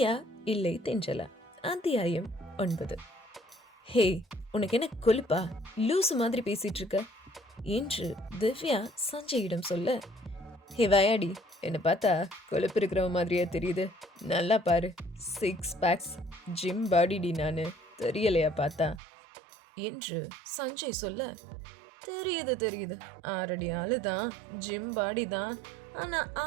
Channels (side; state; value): left; drops out; at 19.0 s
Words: இல்லை தென்றலா, அத்தியாயம் 9. ஹே, உனக்கு என்ன கொழுப்பா? லூசு மாதிரி பேசிட்டு இருக்க என்று திவ்யா சஞ்சயிடம் சொல்ல, ஹே வயாடி, என்னை பார்த்தா கொழுப்பு இருக்கிற மாதிரியே தெரியுது. நல்லா பாரு, 6 பேக்ஸ், ஜிம் பாடிடி, நான் தெரியலையா பார்த்தா என்று சஞ்சய் சொல்ல, தெரியுது 6 அடி ஆளு தான், ஜிம் பாடி தான், ஆனா